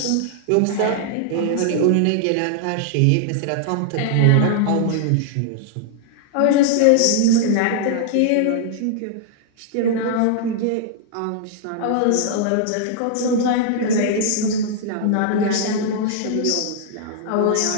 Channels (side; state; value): both; different; correlation -0.01